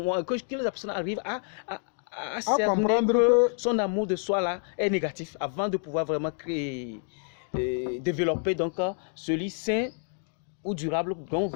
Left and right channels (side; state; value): right; silent; 56 dB below the other